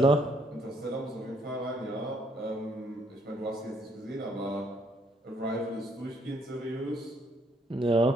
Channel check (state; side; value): normal; both; correlation 0.69